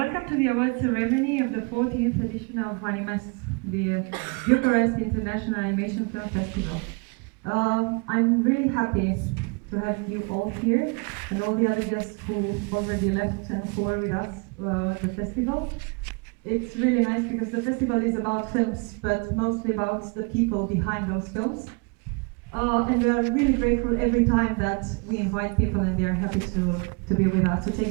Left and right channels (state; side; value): quieter; left; 32.1 dB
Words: to the award ceremony of the 14th edition of Animest, the Bucharest International Animation Film Festival. I'm really happy to have you all here and all the other guests who already left and who are with us at the festival. It's really nice because the festival is about films, but mostly about the people behind those films. And we are really grateful every time that we invite people and they are happy to be with us, to